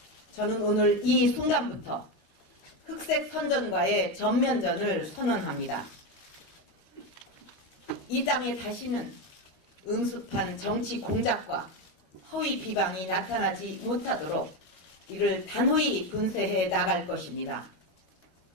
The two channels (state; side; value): late; right; 13 ms